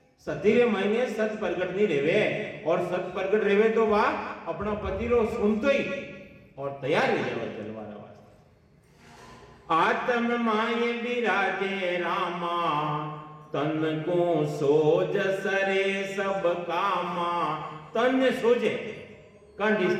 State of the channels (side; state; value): both; identical; correlation 1.00